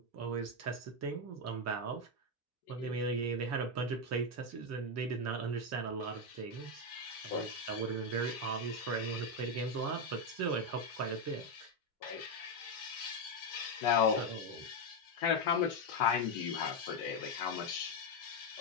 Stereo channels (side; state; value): both; normal; correlation 0.05